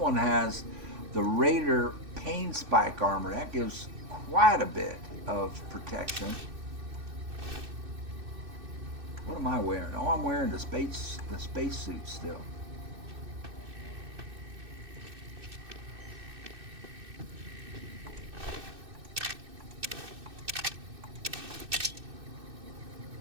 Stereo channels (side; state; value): left; late; 2.6 ms